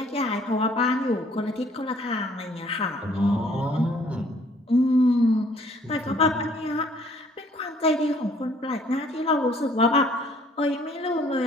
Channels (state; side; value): normal; both; correlation 0.60